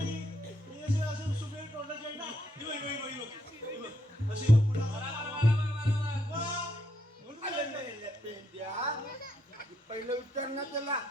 पहिलं उत्तर ना त्याला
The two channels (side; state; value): both; normal; correlation 0.76